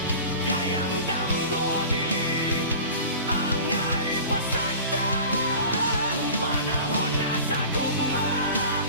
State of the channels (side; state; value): both; inverted; correlation -0.38